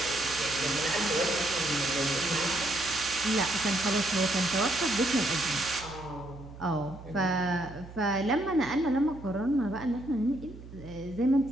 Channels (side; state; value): right; noise; hum, 16 dB below the sound